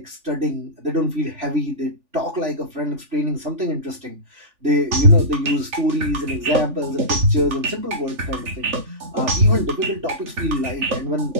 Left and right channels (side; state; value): left; late; 3.4 ms